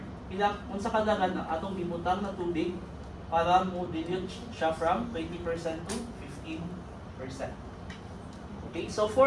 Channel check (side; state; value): both; identical; correlation 1.00